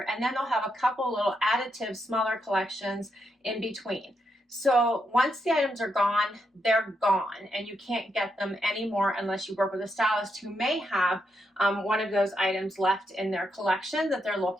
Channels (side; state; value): both; normal; correlation 0.81